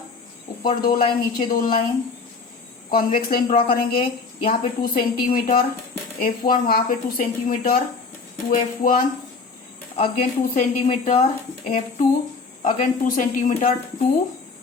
ऊपर 2 लाइन, नीचे 2 लाइन, कॉन्वेक्स लाइन ड्रॉ करेंगे। यहाँ पे 2 सेंटीमीटर F1, वहां पे 2 centimetre 2F1, again 2 centimeter f2, again 2 centimeter 2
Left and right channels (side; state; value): right; quieter; 4.5 dB